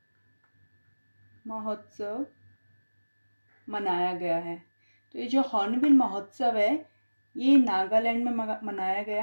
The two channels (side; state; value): both; inverted; correlation -1.00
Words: मनाया गया है। तो ये जो हॉर्नबिल महोत्सव है ये नागालैंड में मनाया